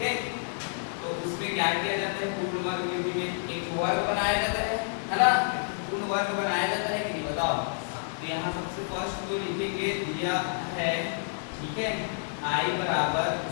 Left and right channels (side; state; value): right; silent; digital silence